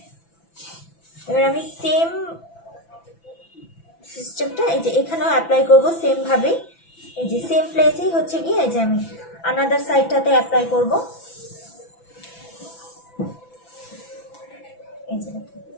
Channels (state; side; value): late; right; 6.0 ms